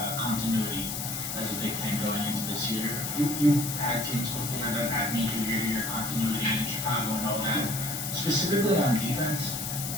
continuity as a big thing going into this year. You've had teams before that had major year-to-year continuity in Chicago and all that. Specifically on defense,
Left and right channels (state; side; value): noise; left; hiss, 4 dB below the sound